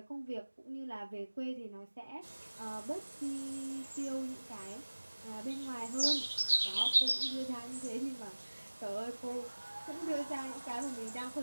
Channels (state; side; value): inverted; both; correlation -1.00